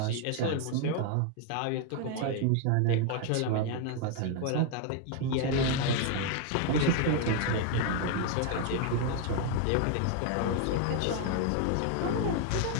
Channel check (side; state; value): both; different; correlation 0.01